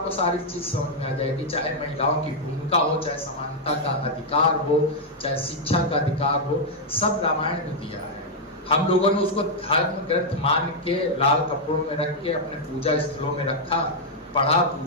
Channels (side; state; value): both; normal; correlation -0.03